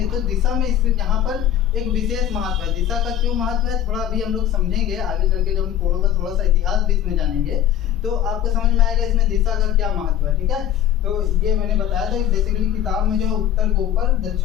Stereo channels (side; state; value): right; quieter; 10.7 dB